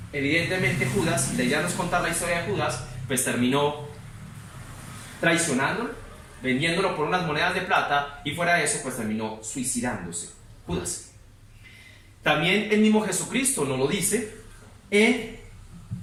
Evidentemente Judas, la idea no es contar la historia de Judas, pues terminó traicionándolo, vendiéndolo por unas monedas de plata, y fuera de eso pues terminó suicidándose Judas. También el mismo Jesucristo nos lo dice en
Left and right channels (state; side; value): identical; both; correlation 1.00